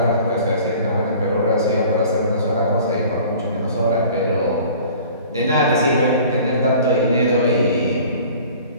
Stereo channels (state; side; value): inverted; both; correlation -0.47